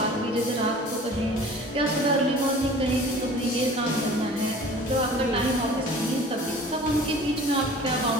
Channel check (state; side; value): normal; both; correlation 0.45